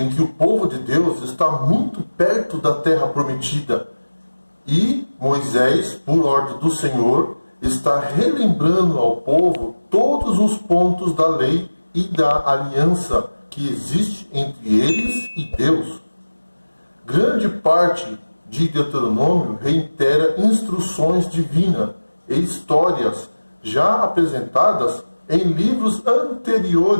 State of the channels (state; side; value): inverted; both; correlation -1.00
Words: que o povo de Deus está muito perto da terra prometida e Moisés, por ordem do Senhor, está relembrando ao povo todos os pontos da lei e da aliança que existe entre eles e Deus. Grande parte de Deuteronômio reitera instruções divinas e histórias já apresentadas em livros